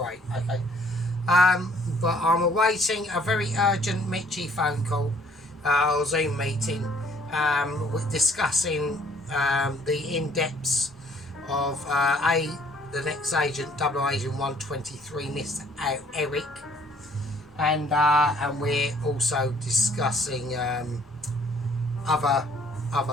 Okay. But I'm awaiting a very urgent Mitchie phone call or Zoom meeting discussing the in-depths of the next agent, Double Agent 123, Mr. Eric, and we're also discussing other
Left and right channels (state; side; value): normal; both; correlation 0.60